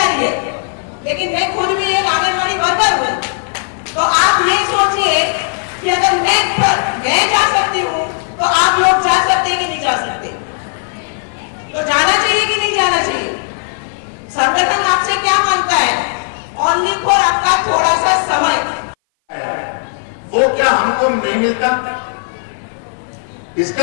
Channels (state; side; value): silent; right; 58 dB below the other